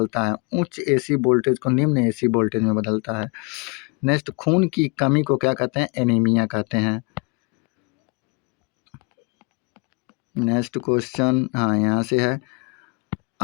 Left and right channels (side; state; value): right; quieter; 31.6 dB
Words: है उच्च AC वोल्टेज को निम्न AC वोल्टेज में बदलता है। नेक्स्ट खून की कमी को क्या कहते हैं? एनीमिया कहते हैं। नेक्स्ट क्वेश्चन हाँ यहाँ से है।